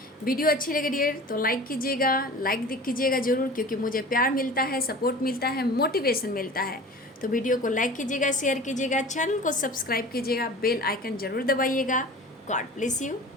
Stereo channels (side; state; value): both; normal; correlation 0.39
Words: वीडियो अच्छी लगे डियर तो लाइक कीजिएगा, लाइक कीजिएगा ज़रूर, क्योंकि मुझे प्यार मिलता है, सपोर्ट मिलता है, मोटिवेशन मिलता है। तो वीडियो को लाइक कीजिएगा, शेयर कीजिएगा, चैनल को सब्सक्राइब कीजिएगा, बेल आइकन ज़रूर दबाइएगा। God bless you